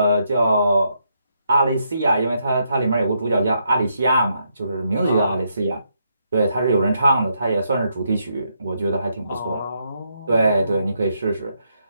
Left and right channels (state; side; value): inverted; both; correlation -0.78